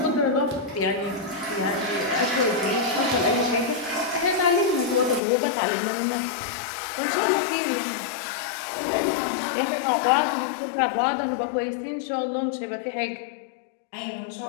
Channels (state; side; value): drops out; right; at 5.2 s